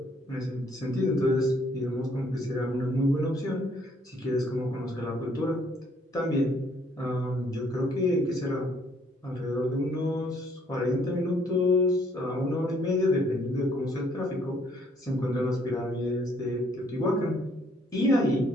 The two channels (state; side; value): normal; both; correlation 0.65